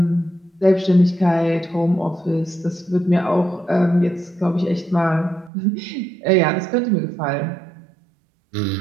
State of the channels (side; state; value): left; drops out; at 5.5 s